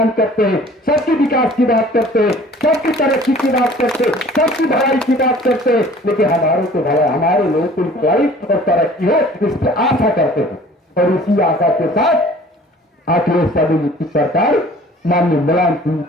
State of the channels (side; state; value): both; normal; correlation 0.49